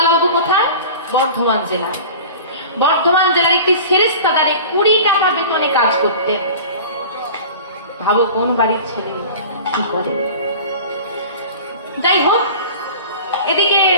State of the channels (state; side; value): inverted; both; correlation -0.38